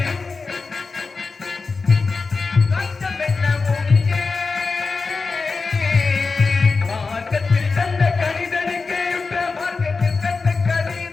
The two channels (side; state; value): right; quieter; 4.3 dB